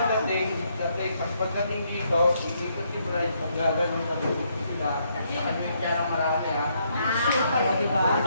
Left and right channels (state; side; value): inverted; both; correlation -0.74